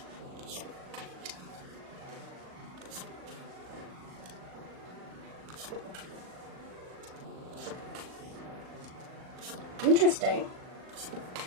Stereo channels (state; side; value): late; left; 38 ms